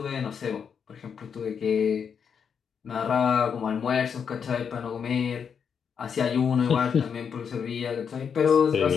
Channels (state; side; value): quieter; right; 6.9 dB